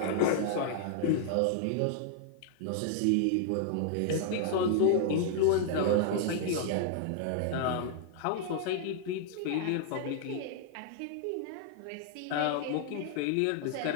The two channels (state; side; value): different; both; correlation -0.01